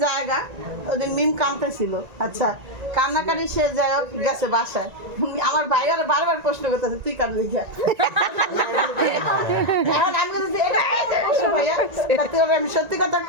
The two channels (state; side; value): late; left; 1.9 ms